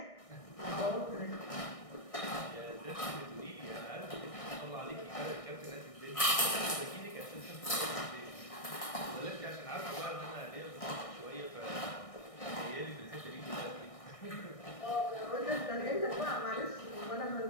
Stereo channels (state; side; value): late; right; 1.6 ms